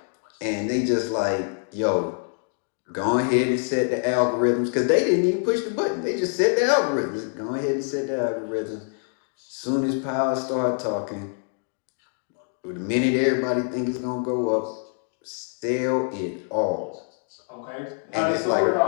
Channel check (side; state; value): right; silent; 55 dB below the other